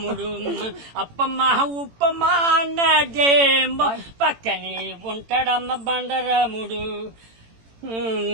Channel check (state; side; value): late; left; 18 ms